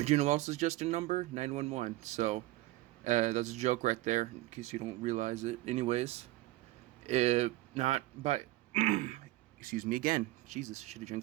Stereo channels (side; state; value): left; quieter; 18.0 dB